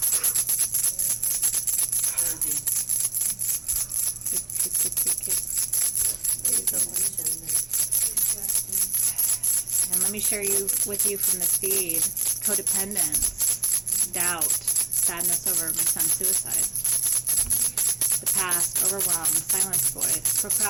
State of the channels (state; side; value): quieter; left; 3.6 dB